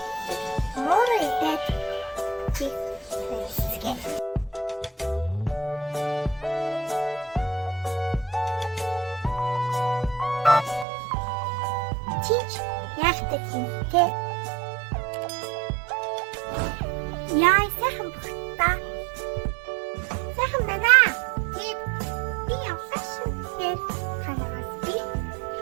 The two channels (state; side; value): drops out; left; at 10.9 s